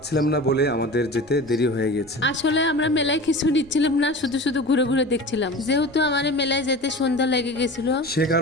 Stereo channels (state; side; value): noise; left; rumble, 27 dB below the sound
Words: না বলে আমাদের যেতে দেরি হয়ে গেছে। আসলে আমরা মেলায় কিছু নিচ্ছিলাম না, শুধু শুধু ঘুরে ঘুরে দেখছিলাম। যেহেতু আমার মেলায় যেতে সন্ধ্যা লেগে গেছিল, সে